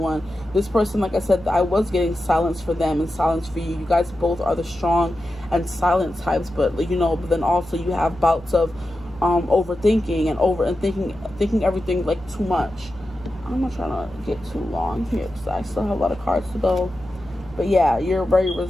This person, like I said, I was getting silence for them and silence for you. You guys both are the strong and silent types, but but then also you have bouts of overthinking and thinking everything like too much. I'm not trying to get too long here, because I still have a lot of cards to go. But yeah, you're very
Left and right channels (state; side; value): noise; left; hum, 22 dB below the sound